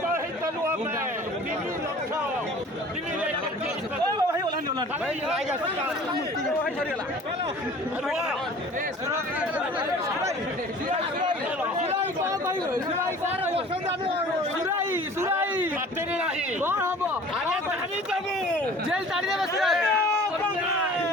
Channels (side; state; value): both; normal; correlation 0.46